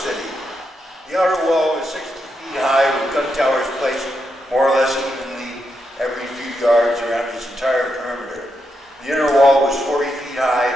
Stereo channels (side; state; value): both; normal; correlation 0.83